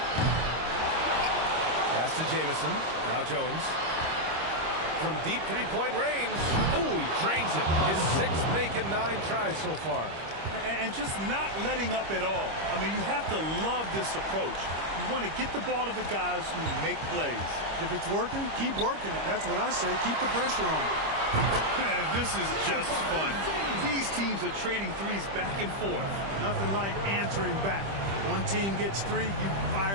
Pass to Jamison. Now Jones. From deep three-point range. Ooh, he drains it. His 6th make in 9 tries so far. And just not letting up at all. I mean, you have to love this approach. You want to get the ball to the guys who make plays. If it's working, keep working it. That's what I say. Keep the pressure on. Man, this is just fun. These teams are trading threes back and forth. Nothing like answering back. One team gets 3, you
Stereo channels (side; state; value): left; late; 25 ms